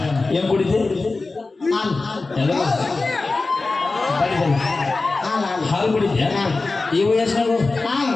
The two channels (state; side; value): quieter; right; 3.6 dB